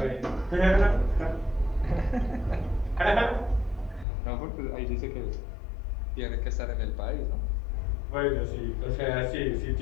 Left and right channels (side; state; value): right; drops out; at 4.0 s